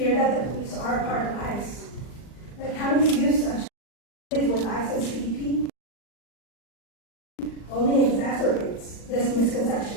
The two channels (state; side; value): late; right; 39 ms